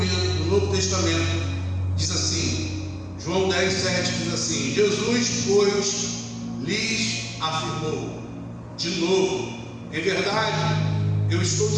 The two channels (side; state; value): both; identical; correlation 1.00